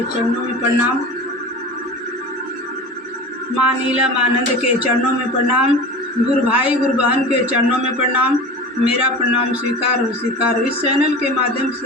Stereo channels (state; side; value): normal; both; correlation 0.33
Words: चरणों में प्रणाम। माँ नीला मानंद के चरणों में प्रणाम। गुरु भाई गुरु बहन के चरणों में प्रणाम। मेरा प्रणाम स्वीकार हो, स्वीकार हो। इस चैनल के माध्यम